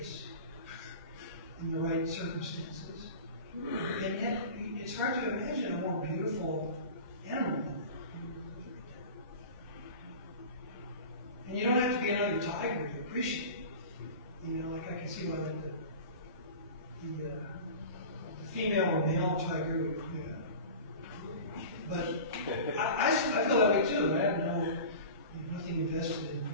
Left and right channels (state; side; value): inverted; both; correlation -0.35